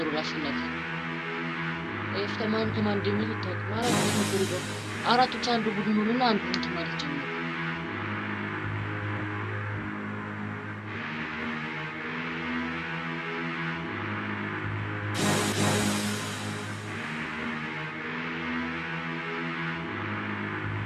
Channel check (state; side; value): identical; both; correlation 1.00